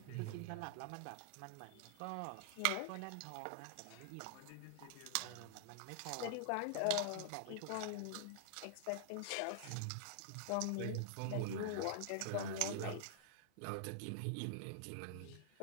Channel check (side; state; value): both; different; correlation -0.01